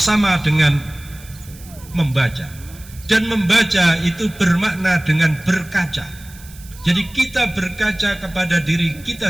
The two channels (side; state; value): right; noise; hiss, 21 dB below the sound